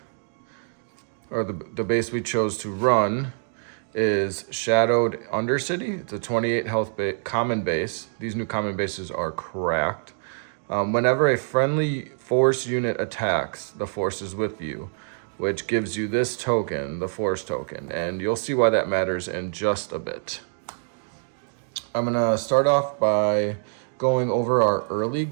or the base we chose to run, is Shadowed Undercity. It's a 28 health common base. These new common bases are cracked. Whenever a friendly force unit attacks, the force is with you, which gives you this token, the force token. And you'll see why that matters in just a bit. I'm going to start off by going over our early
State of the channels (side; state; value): left; silent; digital silence